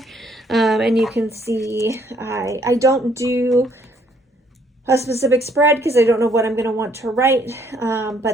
and you can see I don't do a specific spread because I don't know what I'm going to want to write,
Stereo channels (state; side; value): normal; both; correlation 0.66